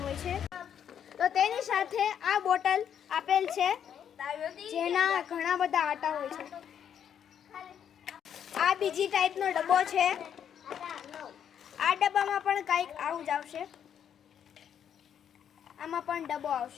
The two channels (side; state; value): right; quieter; 8.8 dB